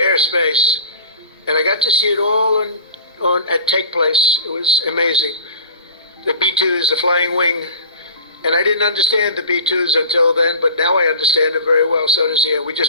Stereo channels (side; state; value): both; inverted; correlation -0.40